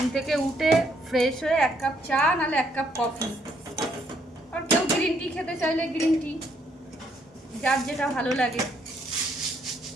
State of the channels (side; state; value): both; normal; correlation 0.71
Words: থেকে উঠে ফ্রেশ হয়ে 1 কাপ চা নাহলে 1 কাপ কফি, আর কেউ গ্রিন টি খেতে চাইলে গ্রিন টি, যার যেটা ভালো লাগে।